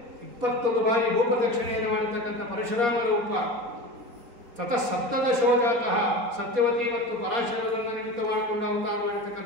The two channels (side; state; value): left; late; 4.2 ms